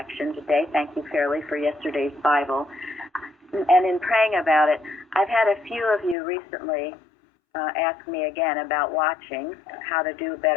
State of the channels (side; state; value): right; drops out; at 6.2 s